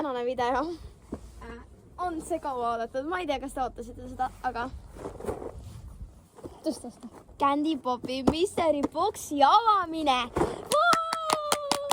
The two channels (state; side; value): identical; both; correlation 1.00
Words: video on see kaua oodatud. Ma ei tea, kas te ootasite seda, aga... Tõsta. Candy Popi Mystery Boxi avamine!